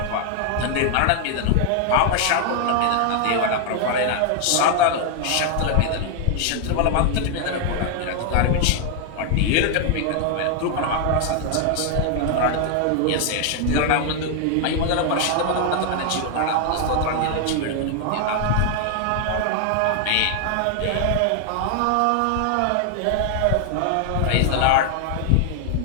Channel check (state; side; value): different; both; correlation 0.00